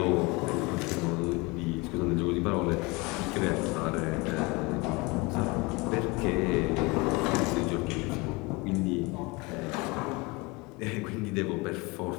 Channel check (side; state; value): right; quieter; 25.8 dB